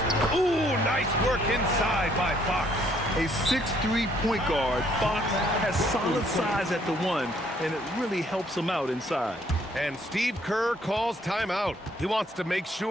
Ooh, nice work inside by Fox. A 6'3" point guard, Fox has solid size at the 1, and it really helps him out inside. And Steve Kerr calls timeout. He wants to make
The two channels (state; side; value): normal; both; correlation 0.65